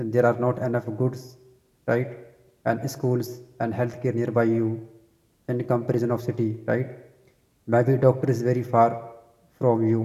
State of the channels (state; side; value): identical; both; correlation 1.00